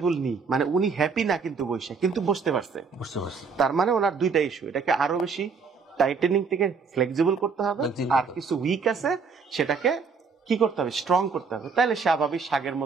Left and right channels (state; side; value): quieter; left; 5.2 dB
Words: নি, মানে উনি হ্যাপি না কিন্তু বসে, কিন্তু বসতে পারছে। তার মানে ওনার দুইটা ইস্যু, এটাকে আরো বেশি টাইটেনিং থেকে ফ্লেক্সিবল করতে হবে, আর কিছু উইক আছে সেটাকে কি করতে হবে, স্ট্রং করতে হবে। তাহলে স্বাভাবিক শাগের